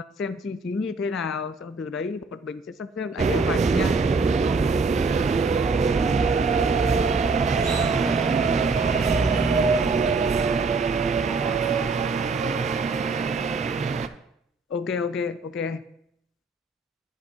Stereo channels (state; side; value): quieter; left; 3.8 dB